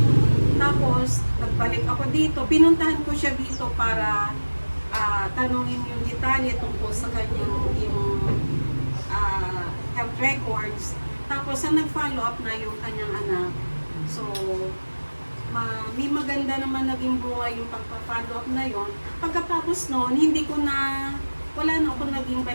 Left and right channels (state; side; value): inverted; both; correlation -1.00